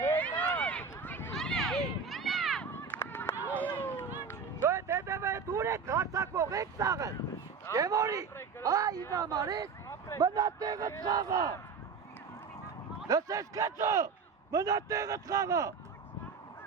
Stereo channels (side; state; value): left; quieter; 5.5 dB